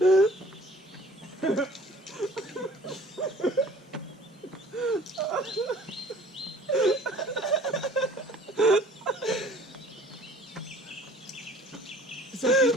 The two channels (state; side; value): normal; both; correlation 0.51